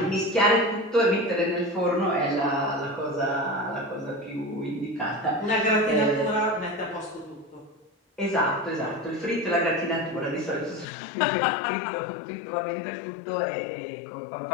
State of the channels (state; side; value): drops out; right; at 10.9 s